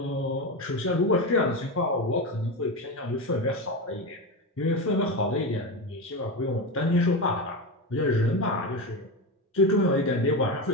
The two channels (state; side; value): normal; both; correlation 0.17